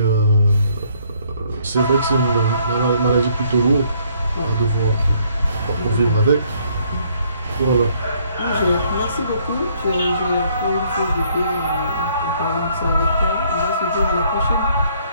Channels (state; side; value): inverted; both; correlation -0.66